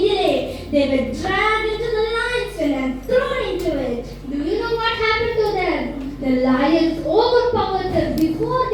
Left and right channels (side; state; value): both; identical; correlation 1.00